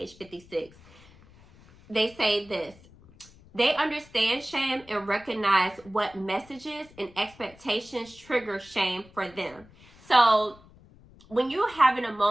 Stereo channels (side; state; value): left; noise; rumble, 25 dB below the sound